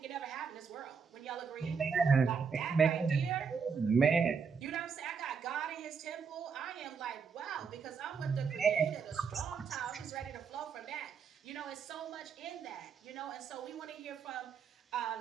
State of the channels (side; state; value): left; quieter; 5.9 dB